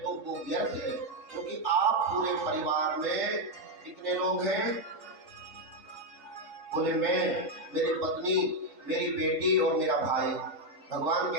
तो वो व्यर्थ है, क्योंकि आप पूरे परिवार में कितने लोग हैं? बोले मैं, मेरी पत्नी, मेरी बेटी और मेरा भाई। भगवान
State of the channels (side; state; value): left; late; 4.5 ms